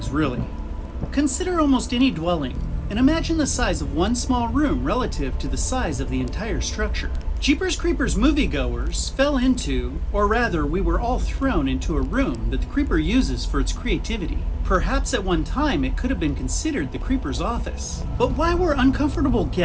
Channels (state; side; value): identical; both; correlation 1.00